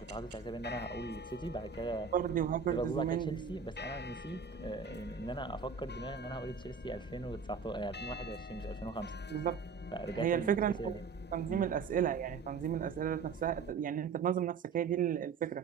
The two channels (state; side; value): quieter; left; 5.9 dB